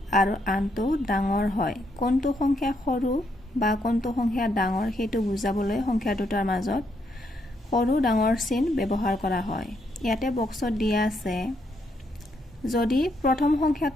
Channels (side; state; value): both; normal; correlation 0.76